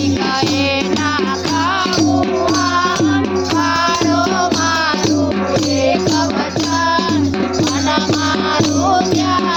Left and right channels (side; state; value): both; identical; correlation 1.00